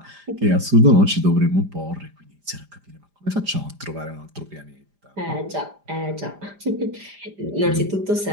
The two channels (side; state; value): left; late; 5.0 ms